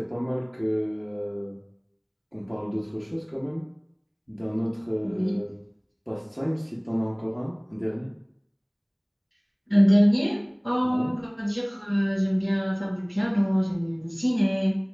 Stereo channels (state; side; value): identical; both; correlation 1.00